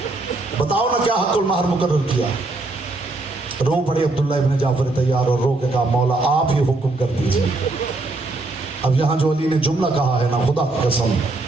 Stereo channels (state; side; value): quieter; left; 3.1 dB